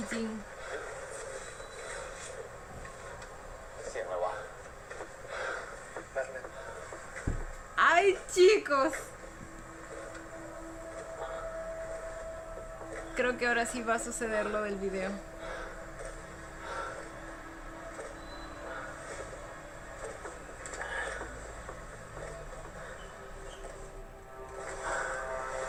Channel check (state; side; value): identical; both; correlation 1.00